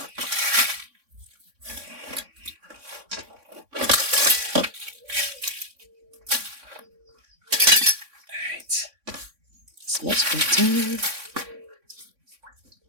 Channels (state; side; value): late; left; 3.6 ms